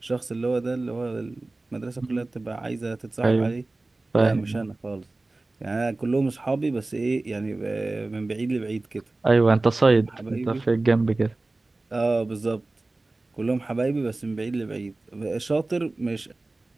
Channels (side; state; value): left; quieter; 3.1 dB